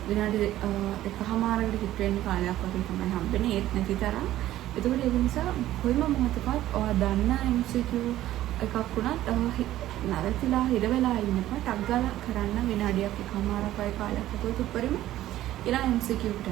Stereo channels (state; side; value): quieter; left; 14.0 dB